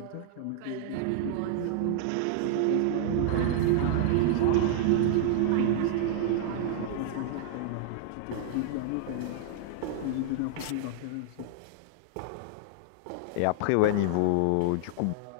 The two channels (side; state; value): both; different; correlation -0.01